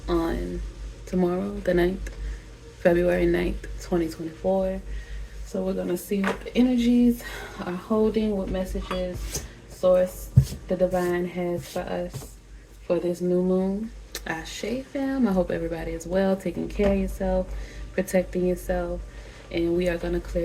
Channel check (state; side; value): identical; both; correlation 1.00